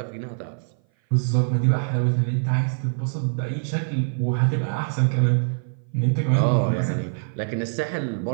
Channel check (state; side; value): silent; left; 58 dB below the other